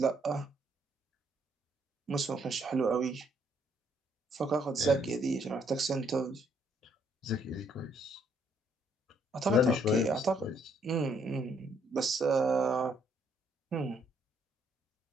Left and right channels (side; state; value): both; normal; correlation 0.69